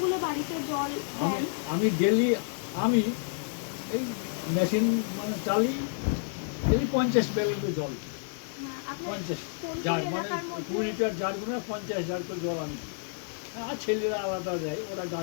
বাড়িতে জল আমি দেন? আমি ডেলি আমি এই মেশিন মানে চালি ডেলি 50 ব্যারেল জল। আপনার 50 কোন জার কোন মানে এলাকার 20 মধ্যে? লিটার জার করে 50 জার করে জল আমি। আর ছেলেরা আলাদা যায়, ওরা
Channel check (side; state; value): right; silent; 58 dB below the other